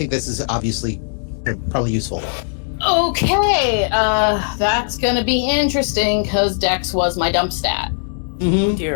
this is obviously probably useful. Okay, that's gonna be interesting because Dex was my dump stat.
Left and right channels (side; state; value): right; silent; 67 dB below the other